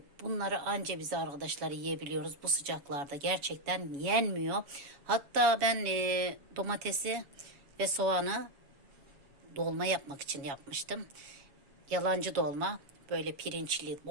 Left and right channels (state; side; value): late; left; 7.1 ms